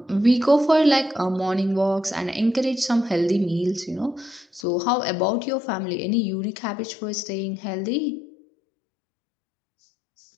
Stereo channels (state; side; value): drops out; right; at 4.7 s